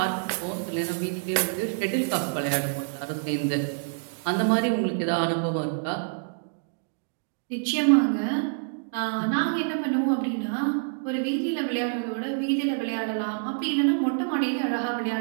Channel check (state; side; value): silent; left; digital silence